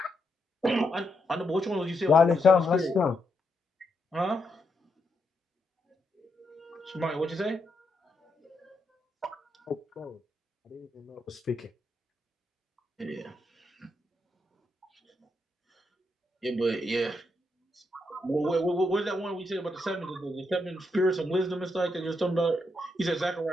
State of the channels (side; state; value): both; normal; correlation 0.81